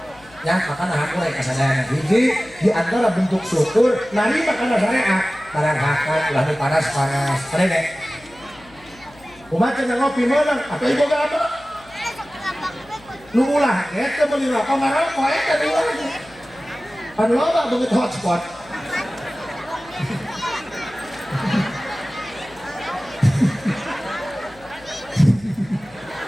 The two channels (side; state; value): left; noise; hum, 25 dB below the sound